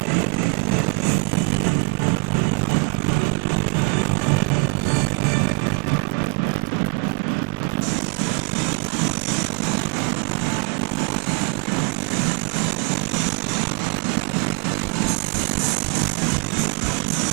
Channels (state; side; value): quieter; left; 34.0 dB